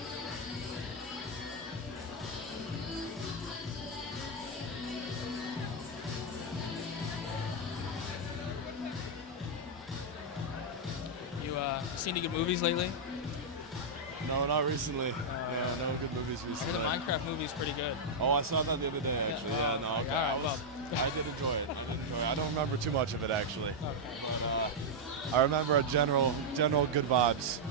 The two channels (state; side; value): normal; both; correlation -0.03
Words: Seen any good movies lately? No, not recently. No good movies See, recently. the Minecraft movie's pretty good. Oh, I saw that the other day, actually. Yeah, no, okay. I did enjoy it. I don't remember too much of it, actually. But, I remember a general good vibes